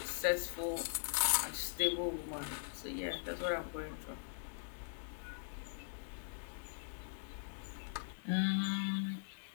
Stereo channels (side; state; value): right; silent; digital silence